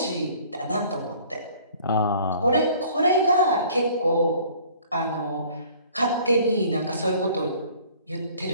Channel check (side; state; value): both; inverted; correlation -0.53